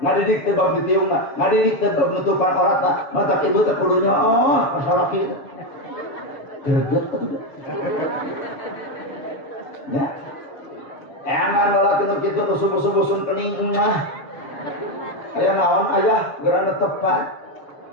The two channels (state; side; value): late; right; 7.1 ms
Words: teu bab ditiungna, ngadidik teu bab nutupan auratna. Mata ibu teh kudunya salaki itu. Greget atuh. Ya. Eman lalaki nu kitu nu subuh-subuh sun kening mah. Aya naon ayah geura netepan.